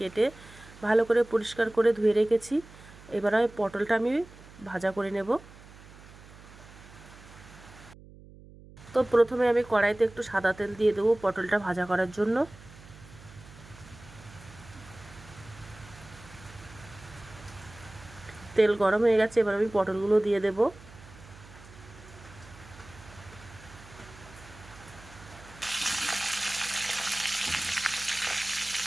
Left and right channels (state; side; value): noise; right; hum, 20 dB below the sound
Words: ভালো করে পরিষ্কার করে ধুয়ে রেখেছি। এবার আমি পটলটা আমি ভাজা করে নেব। তো প্রথমে আমি কড়াইতে একটু সাদা তেল দিয়ে দেবো পটলটা ভাজা করার জন্য। তেল গরম হয়ে গেছে, এবার আমি পটলগুলো দিয়ে দেব।